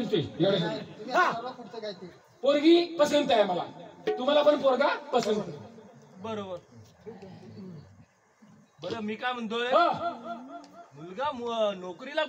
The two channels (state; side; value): identical; both; correlation 1.00